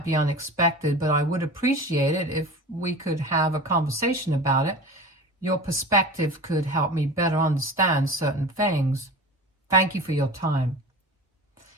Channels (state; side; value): normal; both; correlation 0.34